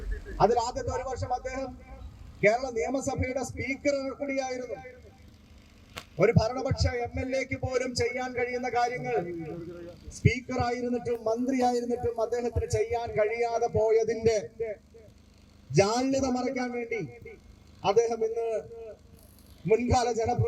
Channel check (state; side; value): identical; both; correlation 1.00